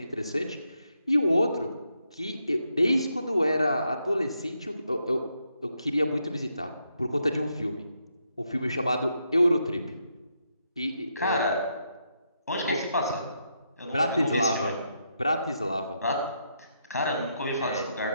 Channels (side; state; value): both; inverted; correlation -0.80